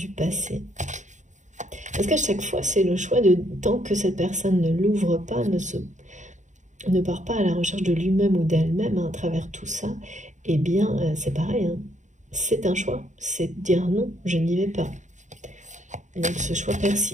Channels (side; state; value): left; late; 0.35 ms